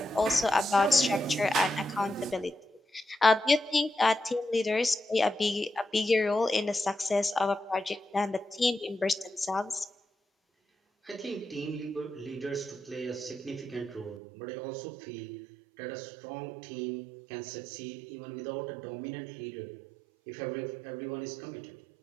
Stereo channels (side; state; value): left; drops out; at 14.2 s